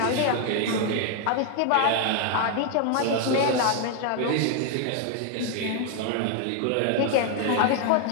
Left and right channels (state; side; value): different; both; correlation 0.00